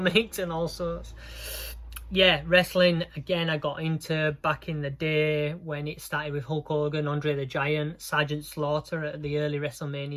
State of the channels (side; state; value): both; identical; correlation 1.00